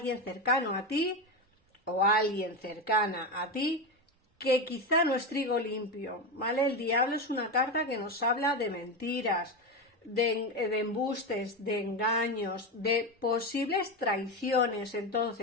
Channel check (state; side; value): normal; both; correlation 0.16